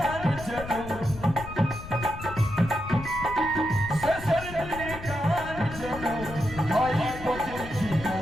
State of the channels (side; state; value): left; noise; rumble, 12 dB below the sound